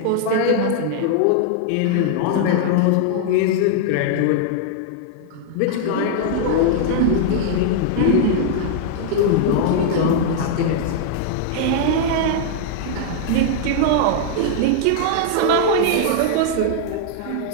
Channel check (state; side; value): different; both; correlation -0.01